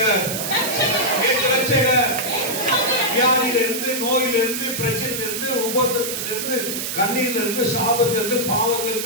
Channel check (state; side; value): noise; right; hiss, 3 dB below the sound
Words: இயேசு ரட்சகர். வியாதியிலிருந்து, நோயிலிருந்து, பிரச்சனையிலிருந்து, உபத்திரத்திலிருந்து, கண்ணீரிலிருந்து, சாபத்திலிருந்து,